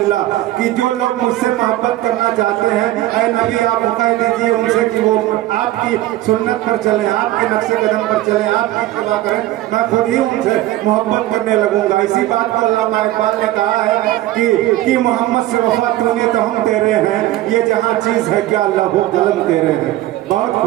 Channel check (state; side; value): quieter; left; 15.5 dB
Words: कि जो लोग मुझसे मोहब्बत करना चाहते हैं, ऐ नबी आप हुक्म दीजिए उनसे कि वो आपकी सुन्नत पर चले, आपके नक्शे कदम पर चले, आपकी इत्तिबा करें, मैं खुद ही उनसे मोहब्बत करने लगूंगा। इसी बात को अल्लामा इकबाल ने कहा है कि मोहम्मद से वफा तूने तो हम तेरे हैं, ये जहाँ चीज है क्या लहू कलम तेरे हैं। बहुत